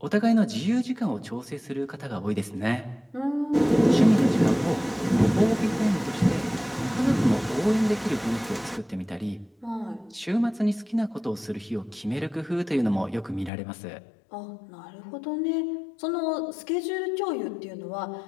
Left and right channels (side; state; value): right; drops out; at 13.5 s